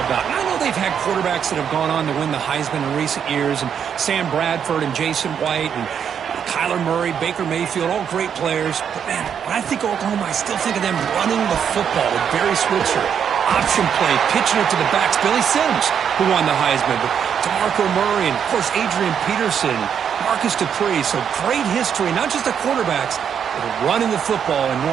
about. And I know they've had quarterbacks that have gone on to win the Heisman in recent years, and Sam Bradford and Jason White and Kyler Murray, Baker Mayfield, all great players. But, man, when I think of Oklahoma, I still think of them running the football with Barry Switzer. Option play, pitching it to the backs. Billy Sims, who won the Heisman. But DeMarco Murray and, of course, Adrian Peterson, Marcus Dupree. So great history, not just the quarterbacks, but running the football in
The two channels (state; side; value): quieter; left; 7.9 dB